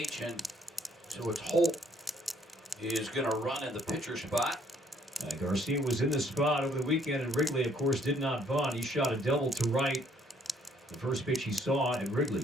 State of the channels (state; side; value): normal; both; correlation 0.65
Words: and so it's Holt is going to run in the pitcher spot. Garcia was in the spot over the weekend, and Wrigley, of course, did not bunt. He shot a double to right. The first pitch he saw at Wrigley.